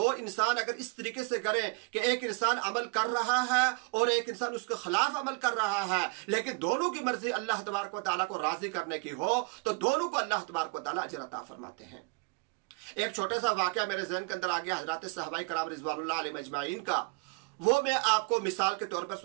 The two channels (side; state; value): left; quieter; 31.3 dB